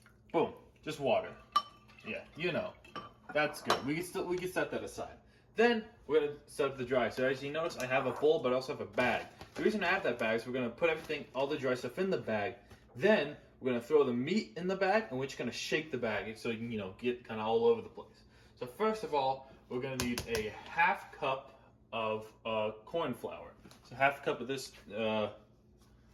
boom, just water. Yeah, you know, that's good. We can set that aside. Then we're gonna set up the dry. So as you notice, I have a bowl, but I also have a bag. The reason I have that bag is we're gonna put everything, all the dry stuff in the bag. Then we're gonna throw the meat in the bag, and we're just gonna shake the bag so you can, you know, get kind of all over the place. So first of all, we're gonna need a half cup of corn flour. So half a cup of this,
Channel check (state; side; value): identical; both; correlation 1.00